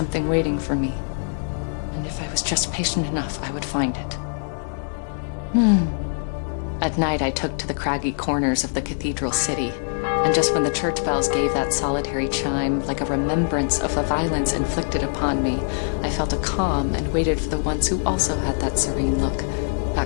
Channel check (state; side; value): silent; right; digital silence